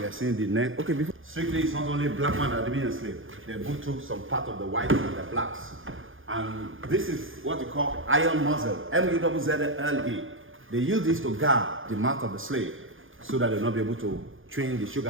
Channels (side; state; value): left; late; 0.58 ms